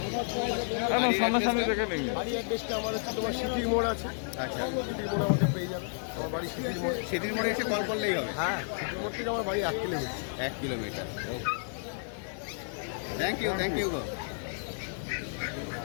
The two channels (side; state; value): right; silent; 56 dB below the other